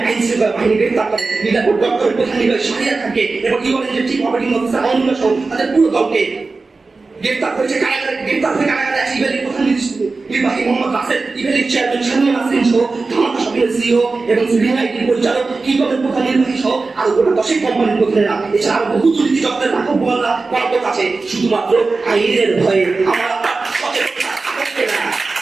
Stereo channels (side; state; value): left; quieter; 3.9 dB